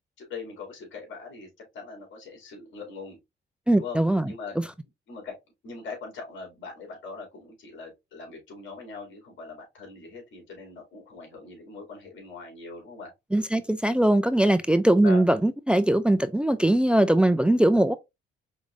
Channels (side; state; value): both; normal; correlation 0.95